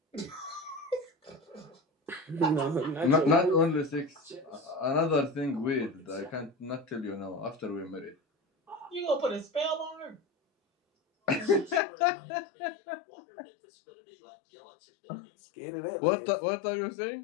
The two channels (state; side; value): drops out; right; at 11.8 s